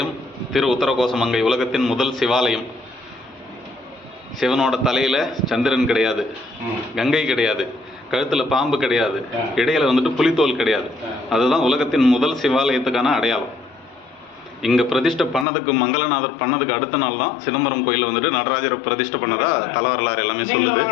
திரு உத்தரகோசமங்கை உலகத்தின் முதல் சிவாலயம். சிவனோட தலையில சந்திரன் கிடையாது, கங்கை கிடையாது, கழுத்துல பாம்பு கிடையாது, இடையில வந்துட்டு புலித்தோல் கிடையாது. அதுதான் உலகத்தின் முதல் சிவாலயத்துக்கான அடையாளம். இங்கே பிரதிஷ்டை பண்ணதுக்கு மங்களநாதர் பண்ணதுக்கு அடுத்த நாள் தான் சிதம்பரம் கோயிலில் வந்துட்டு நடராஜரை பிரதிஷ்டை பண்ணதா தலவரலாறு எல்லாமே சொல்லுது.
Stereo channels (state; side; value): drops out; right; at 15.5 s